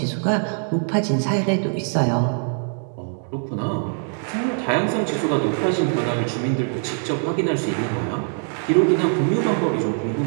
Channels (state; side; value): silent; left; 56 dB below the other